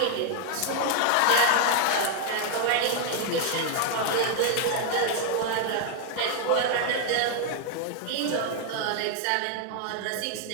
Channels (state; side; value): different; both; correlation 0.00